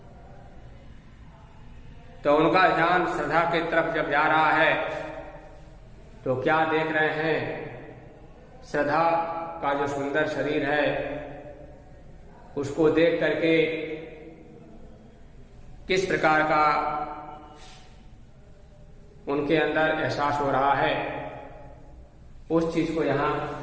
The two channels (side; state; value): both; identical; correlation 1.00